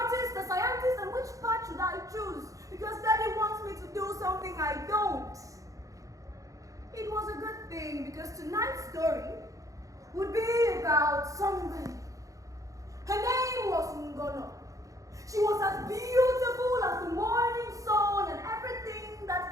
a scientist, and which path should I choose? Because Daddy wants me to do something I don't. It was a good thing, because tonight's story would be about somebody. Her name was Ngono. She was as beautiful as the morning sun, and everything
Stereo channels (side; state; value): left; late; 0.16 ms